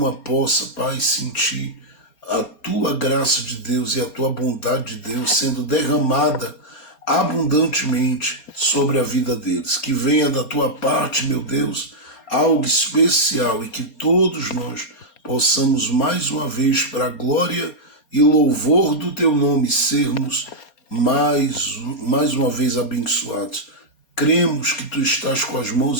possa, Pai, sentir a tua graça de Deus e a tua bondade de Deus sendo derramada abundantemente sobre a vida deles. Que venha da tua parte, meu Deus, algo especial e que todos nós possamos mais uma vez, para a glória e louvor do teu nome, sermos mais uma vez abençoados. Cremos que tu estás com as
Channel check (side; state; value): right; late; 4.3 ms